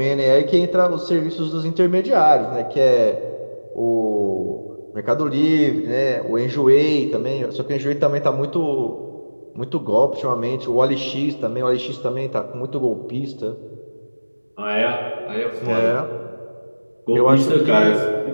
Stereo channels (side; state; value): both; inverted; correlation -1.00